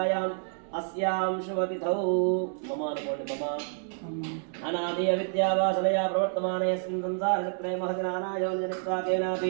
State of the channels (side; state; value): left; silent; 59 dB below the other